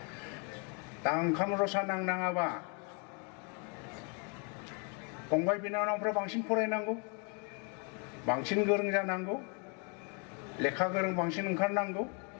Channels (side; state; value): right; quieter; 35.7 dB